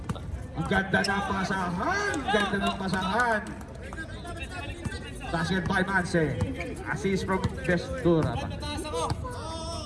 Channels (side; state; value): both; identical; correlation 1.00